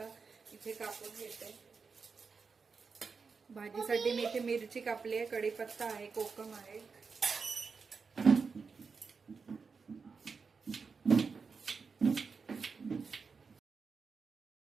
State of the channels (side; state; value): left; quieter; 5.1 dB